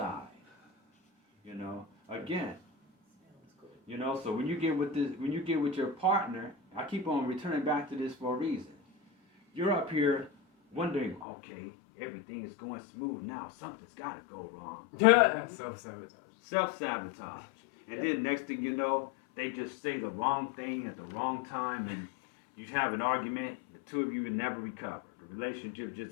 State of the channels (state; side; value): drops out; right; at 11.2 s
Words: You know, again, you know, so when you get with your partner, I keep on returning back to this for a reason. You're up here wondering, okay, everything is going smooth now. Something's got to go wrong. Self-sabotage. Self-sabotage. And then next thing you know, they just say the wrong thing at the wrong time and you have an argument, the two of you never recover. The relationship